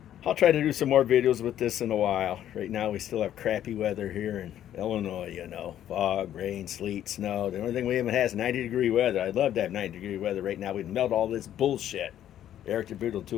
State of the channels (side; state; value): right; quieter; 11.2 dB